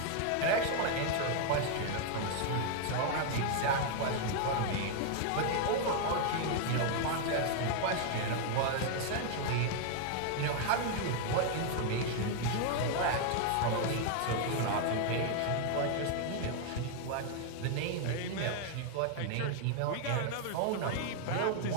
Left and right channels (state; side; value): different; both; correlation 0.00